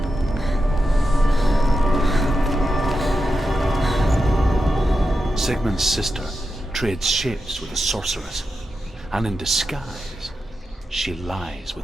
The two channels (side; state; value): both; normal; correlation 0.88